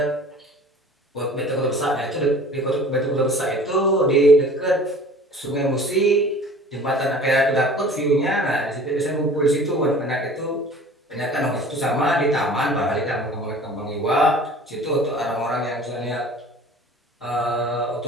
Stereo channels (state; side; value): normal; both; correlation 0.45